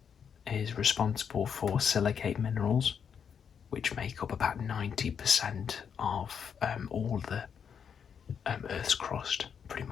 is responsible for silicate minerals, which make up about 90% of all the Earth's crust, pretty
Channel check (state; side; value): quieter; right; 7.3 dB